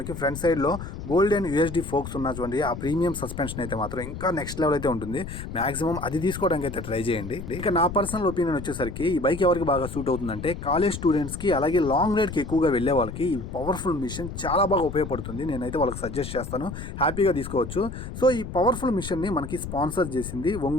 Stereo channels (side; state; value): left; noise; rumble, 9 dB below the sound